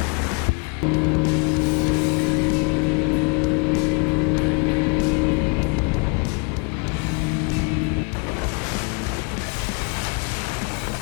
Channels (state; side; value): quieter; right; 33.7 dB